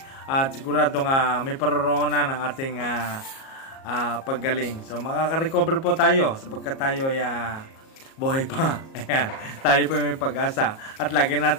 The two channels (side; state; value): right; late; 37 ms